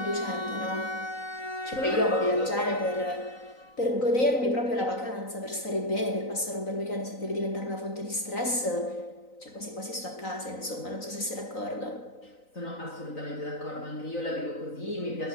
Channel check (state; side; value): late; right; 3.9 ms